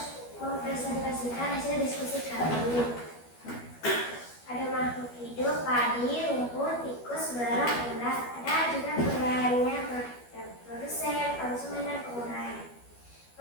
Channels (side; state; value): right; late; 12 ms